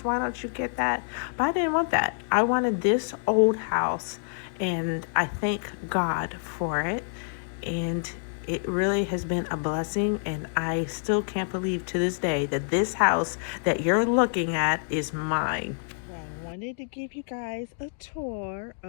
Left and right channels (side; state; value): right; silent; digital silence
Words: Why don't you get that? But I didn't want that. I wanted this old house. And I thank God for it. And it really has been a blessing. And I still can't believe to this day that this house that you're looking at is mine. I wanted to give you guys a tour